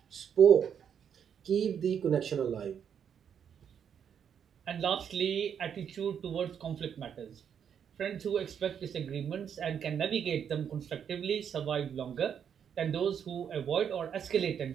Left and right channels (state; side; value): quieter; left; 8.0 dB